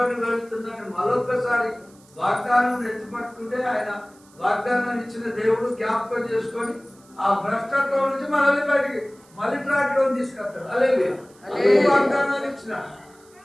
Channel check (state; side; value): noise; right; hiss, 28 dB below the sound